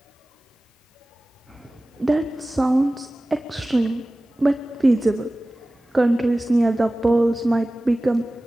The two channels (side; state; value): both; normal; correlation 0.97